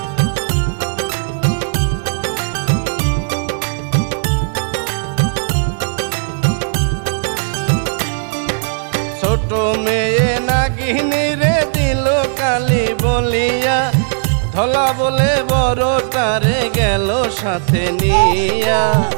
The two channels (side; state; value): left; silent; digital silence